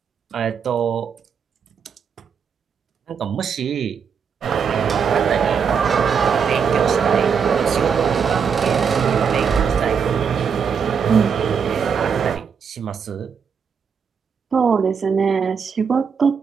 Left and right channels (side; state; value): left; quieter; 6.6 dB